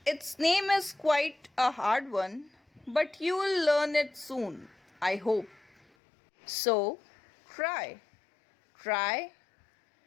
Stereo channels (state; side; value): drops out; right; at 5.9 s